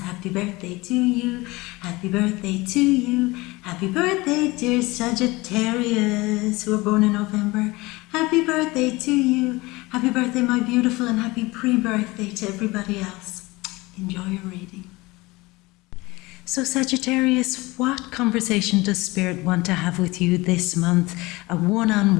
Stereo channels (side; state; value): right; quieter; 22.0 dB